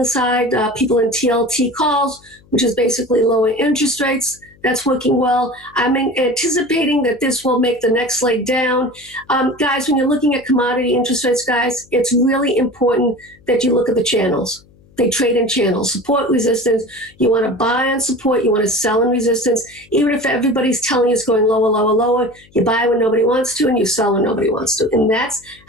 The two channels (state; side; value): noise; left; hum, 29 dB below the sound